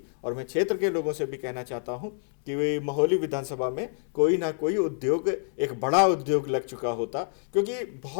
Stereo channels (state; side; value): silent; right; digital silence